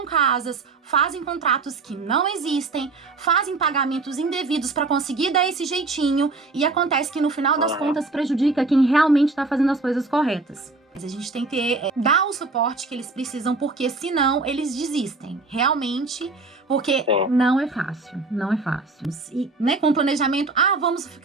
casas, fazem contratos que não existem, fazem pagamentos indevidos pra conseguir dar esse jeitinho e acontece que no final das contas prejudica quem realmente tá fazendo as coisas corretas. Mas a gente tem que dar o suporte que eles precisam, porque senão eles desistem. Realmente, porque não é fácil, não é fácil. E, né, com planejamento, vamos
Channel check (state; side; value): quieter; left; 3.6 dB